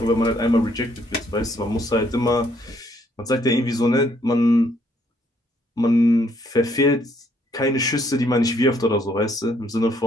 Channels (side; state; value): both; normal; correlation 0.67